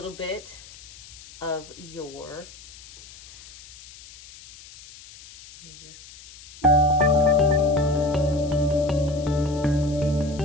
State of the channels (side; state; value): left; noise; hiss, 19 dB below the sound